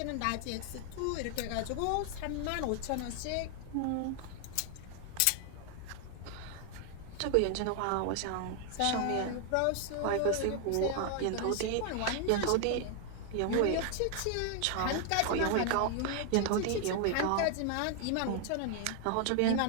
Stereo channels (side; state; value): both; different; correlation 0.00